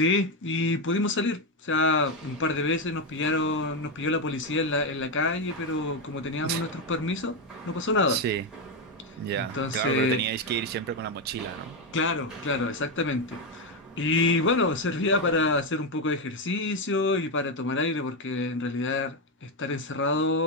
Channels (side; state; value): both; normal; correlation 0.07